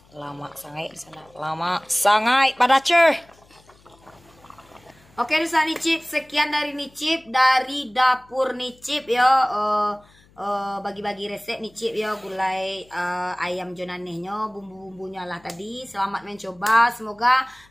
Lama sangat di sana. Lama sangat pada cer. Oke, di sana Nicip, sekian dari Nicip dari dapur Nicip ya. Bagi-bagi resep Nicip ya gulai ayam jonanehnya, bumbu-bumbunya lah tadi. Selamat mencoba, semoga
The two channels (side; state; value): left; noise; hum, 29 dB below the sound